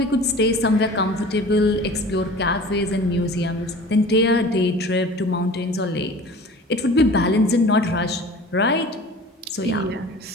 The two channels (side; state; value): both; normal; correlation 0.42